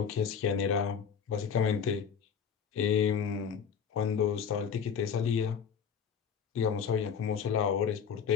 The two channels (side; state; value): right; quieter; 7.1 dB